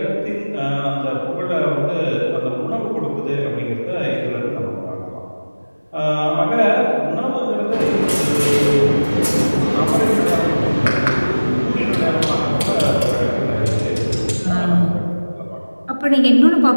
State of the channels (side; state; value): both; inverted; correlation -1.00